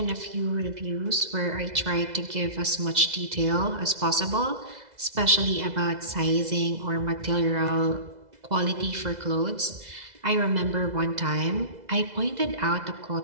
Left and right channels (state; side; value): late; left; 2.0 ms